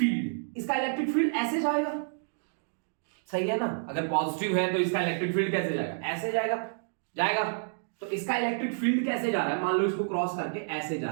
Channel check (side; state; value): left; silent; digital silence